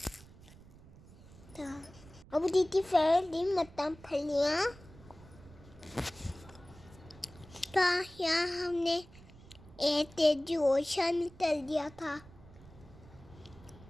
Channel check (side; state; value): right; noise; rumble, 21 dB below the sound